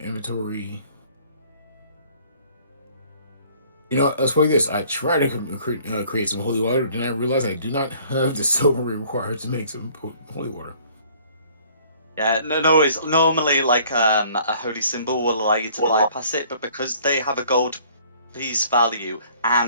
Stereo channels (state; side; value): inverted; both; correlation -0.56